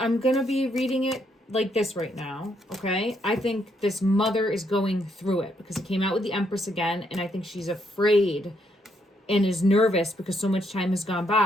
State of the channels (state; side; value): normal; both; correlation 0.74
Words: gonna be reading it like this right now. Okay. I think this mother is going through it because it came out with the Empress again, and I think she's afraid and is nervous because so much time has gone